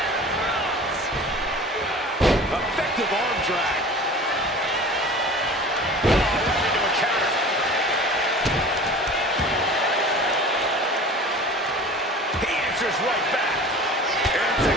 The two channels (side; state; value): both; normal; correlation 0.40